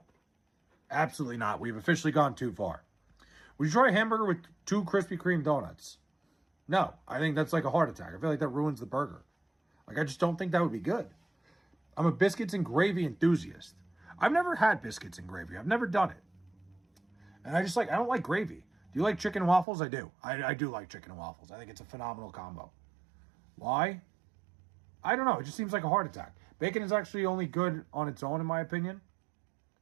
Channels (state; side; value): drops out; left; at 19.7 s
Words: Absolutely not. We've officially gone too far. Would you try a hamburger with 2 Krispy Kreme donuts? No. I think that's like a heart attack. I feel like that ruins the burger. Like, I just don't think that would be good. I'm a biscuits and gravy enthusiast. I've never had biscuits and gravy. I've never done it. And I don't like gravy. Do you like chicken and waffles? I do. I do like chicken and waffles. I think it's a phenomenal combo. Why? I don't know. It just seems like a heart attack. Bacon is actually only good on its own, in my opinion.